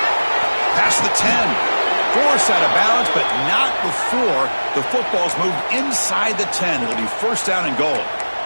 Past the 10. Forced out of bounds, but not before the football's moved inside the 10. It'll be first down and goal.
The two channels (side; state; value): both; inverted; correlation -1.00